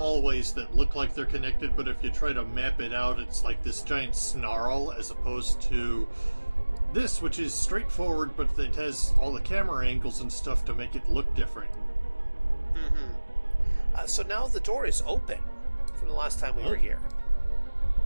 that look like they're connected, but if you try to map it out, it's like this giant snarl, as opposed to this, which is straightforward, but it has all the camera angles and stuff to make it look different. Mm-hmm. So now the door is open from the last time we were here.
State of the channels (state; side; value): inverted; both; correlation -1.00